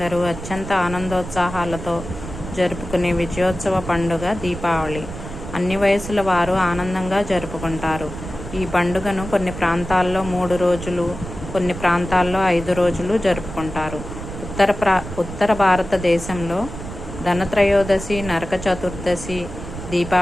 అత్యంత ఆనందోత్సాహాలతో జరుపుకునే విజయోత్సవ పండుగ దీపావళి. అన్ని వయసుల వారు ఆనందంగా జరుపుకుంటారు. ఈ పండుగను కొన్ని ప్రాంతాల్లో 3 రోజులు, కొన్ని ప్రాంతాల్లో 5 రోజులు జరుపుకుంటారు. ఉత్తర భారతదేశంలో ధనత్రయోదశి, నరక చతుర్దశి,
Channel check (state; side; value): noise; right; rumble, 10 dB below the sound